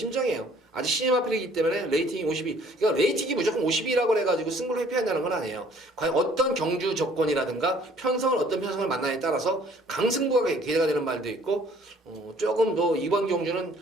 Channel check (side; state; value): both; normal; correlation 0.57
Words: 아직 신임 앞이기 때문에 레이팅이 52. 그러니까 레이팅이 무조건 52라고 해가지고 승부를 회피한다는 건 아니에요. 과연 어떤 경주 조건이라든가 어떤 편성을 만나냐에 따라서 강승부가 기대가 되는 말도 있고 조금 더 이번 경주는